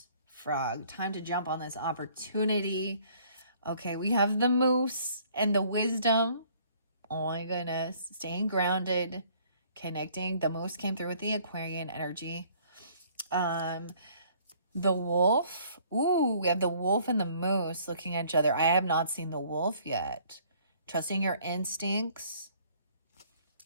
Frog. Time to jump on this opportunity. Okay, we have the moose and the wisdom. Oh my goodness. Staying grounded, connecting. The moose came through with the Aquarian energy. The wolf. Ooh, we have the wolf and the moose looking at each other. I have not seen the wolf yet. Trusting your instincts.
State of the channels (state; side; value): inverted; both; correlation -0.59